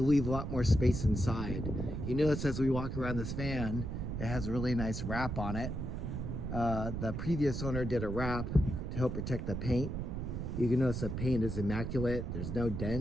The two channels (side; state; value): right; noise; rumble, 4 dB below the sound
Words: leave a lot more space inside. You notice as we walk around this van, it has a really nice wrap on it. The previous owner did a wrap to help protect the paint. You can notice the paint is immaculate. There's no